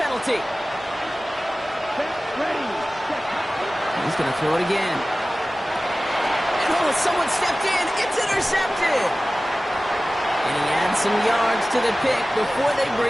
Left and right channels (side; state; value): both; normal; correlation 0.97